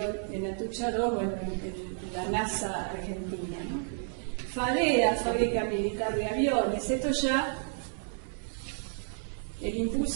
en Atucha 2, bueno, en la NASA argentina, ¿no? FADEA, Fábrica Militar de Aviones, esto ya, el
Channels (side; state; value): left; silent; digital silence